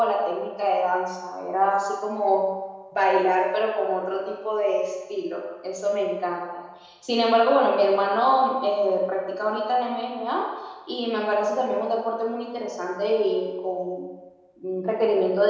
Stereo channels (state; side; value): identical; both; correlation 1.00